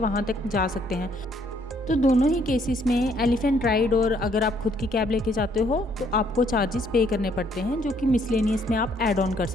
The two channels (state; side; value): normal; both; correlation 0.67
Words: तक जा सकते हैं। तो दोनों ही केसेस में एलिफेंट राइड और अगर आप खुद की कैब लेके जाते हो तो आपको चार्जेस पे करने पड़ते हैं, जो कि मिसलेनियस में आप ऐड ऑन कर